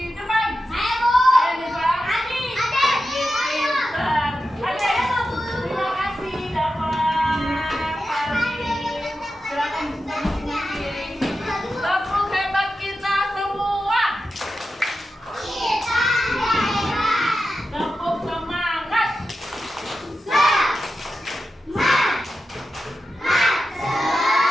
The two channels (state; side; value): normal; both; correlation 0.91